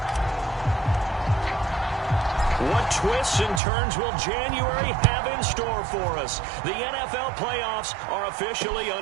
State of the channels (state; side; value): drops out; left; at 3.6 s